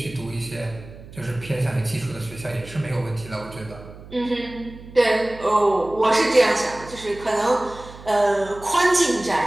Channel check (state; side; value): noise; right; hum, 17 dB below the sound